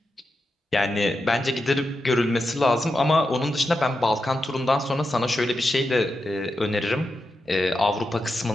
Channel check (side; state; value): both; normal; correlation 0.88